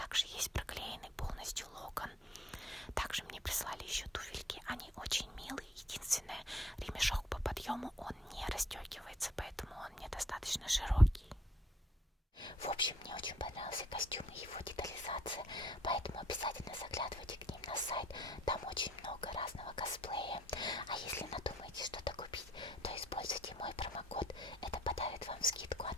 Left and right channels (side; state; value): both; normal; correlation 0.64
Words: есть проклеенный полностью локон. Также мне прислали еще туфельки. Они очень милые. Единственное, ремешок по подъему он не расстегивается, поэтому он мне достаточно широкий. В общем, мне очень понравился костюм и его детализация, поэтому обязательно заглядывайте к ним на сайт. Там очень много разного косплея. А если надумаете что-то купить, то используйте мой промокод. Это подарит вам скидку, а